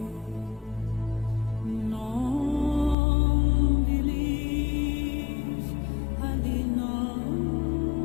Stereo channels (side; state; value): right; drops out; at 3.0 s